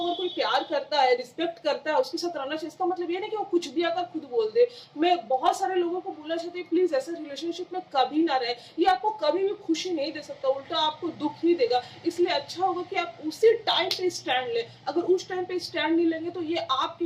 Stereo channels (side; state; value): both; identical; correlation 1.00